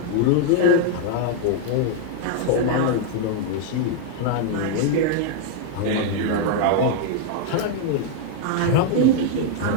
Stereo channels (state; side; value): different; both; correlation 0.00